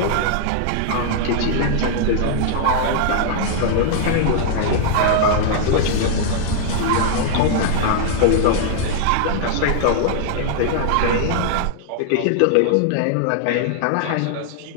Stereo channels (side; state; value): both; different; correlation -0.01